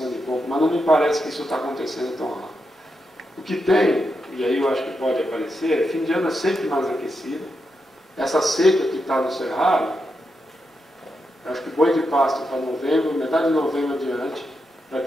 de compra, mas não me parece que isso está acontecendo tão rápido. O que tem, e aí eu acho que pode aparecer, fim de ano é sempre mais aquecido. Essa seca que está no Cerrado, eu acho que boi de pasto para novembro, metade de novembro adiante, vai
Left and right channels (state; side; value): normal; both; correlation 0.85